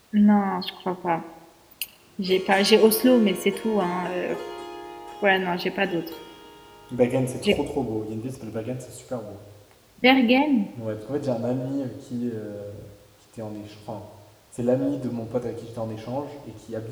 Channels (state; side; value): identical; both; correlation 1.00